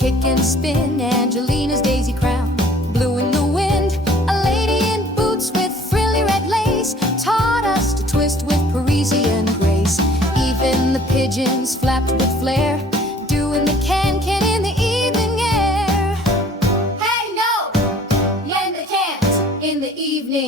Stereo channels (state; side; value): normal; both; correlation 0.53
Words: and spin, Angelina's daisy crown blew in the wind. A lady in boots with frilly red lace taught us to twist with Parisian grace. Even the pigeons flapped with flair, doing the can-can in the evening air. Hey no, yen the can't in the